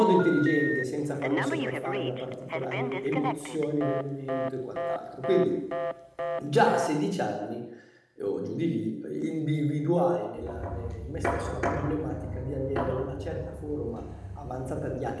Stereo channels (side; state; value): both; identical; correlation 1.00